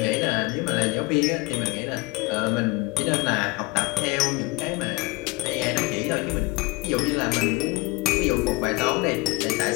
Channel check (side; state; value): right; quieter; 23.4 dB